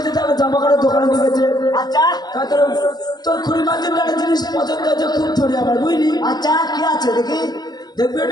তারপর জামা কাপড়ের দোকানে নিয়ে গেছে আচ্ছা তোর খুঁড়ি মাঝে একটা জিনিস পছন্দ হয়েছে খুব ধরে আমার বুঝলি আচ্ছা কি আছে দেখি দেখবি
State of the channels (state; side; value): late; right; 0.19 ms